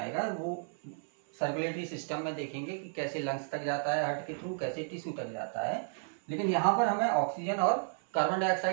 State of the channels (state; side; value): silent; left; 56 dB below the other